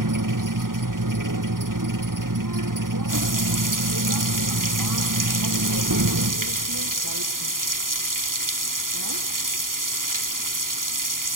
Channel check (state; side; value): late; left; 0.90 ms